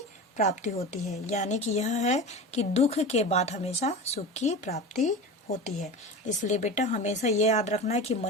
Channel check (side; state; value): both; normal; correlation 0.29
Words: प्राप्ति होती है। यानी कि यह है कि दुख के बाद हमेशा सुख की प्राप्ति होती है। इसलिए बेटा हमेशा ये याद रखना है कि